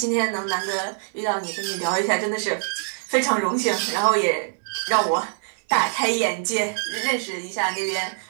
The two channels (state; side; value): silent; left; digital silence